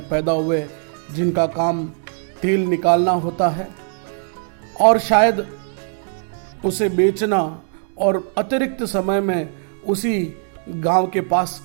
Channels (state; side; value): silent; left; digital silence